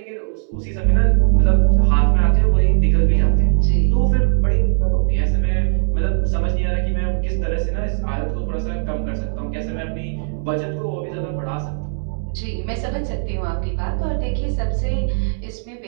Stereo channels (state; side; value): silent; left; 66 dB below the other